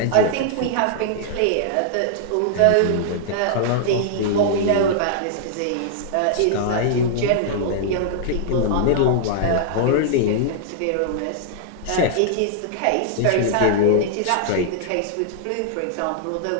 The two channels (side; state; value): both; different; correlation -0.01